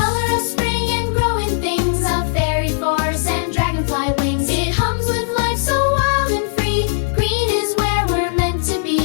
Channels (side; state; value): right; silent; digital silence